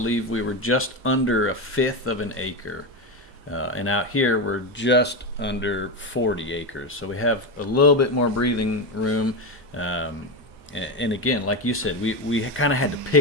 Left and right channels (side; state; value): both; normal; correlation 0.14